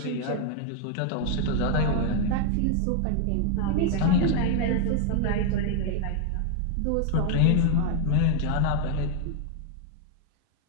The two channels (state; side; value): different; both; correlation 0.00